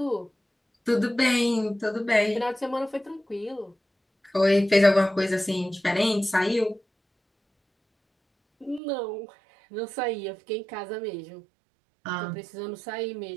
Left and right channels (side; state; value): left; drops out; at 8.8 s